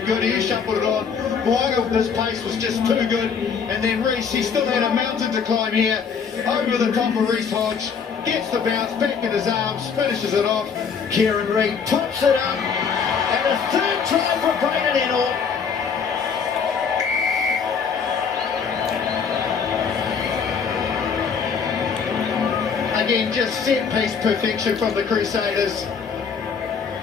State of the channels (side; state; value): right; quieter; 6.2 dB